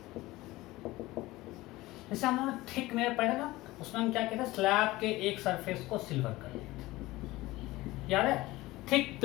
जैसे हम लोगों ने थिक मिरर पढ़ा ना, उसमें हम क्या कहते हैं, स्लैब के एक सरफेस को सिल्वर कर लेते हैं, याद है? थिक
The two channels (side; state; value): right; quieter; 18.9 dB